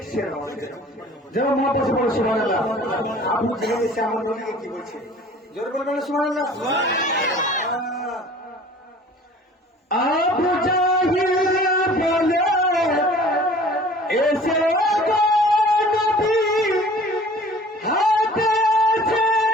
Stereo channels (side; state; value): both; normal; correlation 0.47